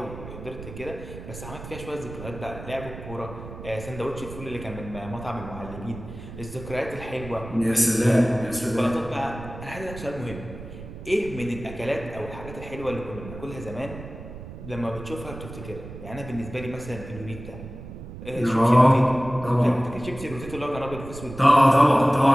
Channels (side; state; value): right; noise; rumble, 12 dB below the sound